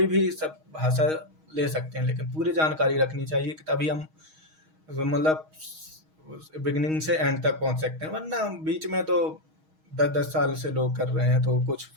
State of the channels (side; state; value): left; late; 6.3 ms